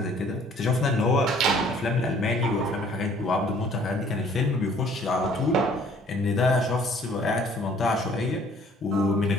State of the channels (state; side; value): normal; both; correlation 0.57